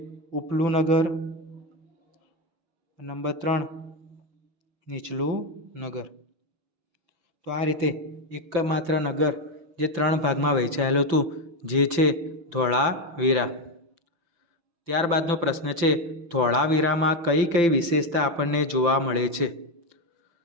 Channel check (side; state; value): left; late; 5.9 ms